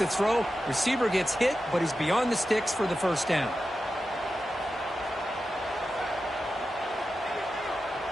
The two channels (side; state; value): both; normal; correlation 0.91